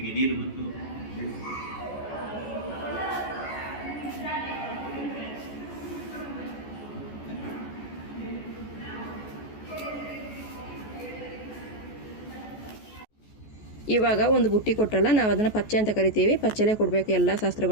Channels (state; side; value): late; right; 14 ms